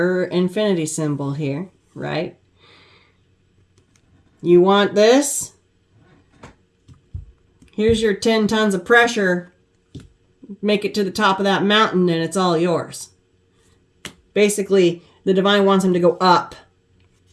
infinity symbol here, right? You want this? Here's your 10 tons of pressure. Make it to the top of that mountain and it's all yours. Basically, the divine wants him to go up.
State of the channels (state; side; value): identical; both; correlation 1.00